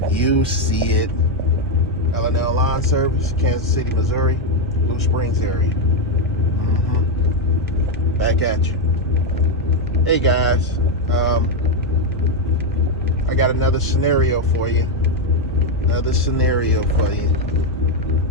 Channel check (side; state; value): both; normal; correlation 0.04